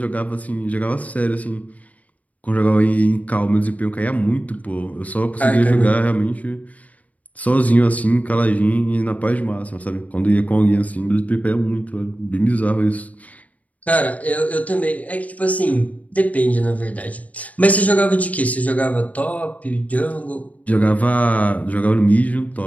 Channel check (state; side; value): late; right; 0.071 ms